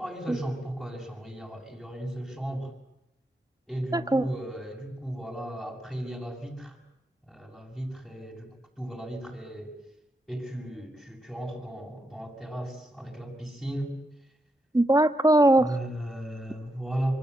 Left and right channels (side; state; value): both; normal; correlation 0.82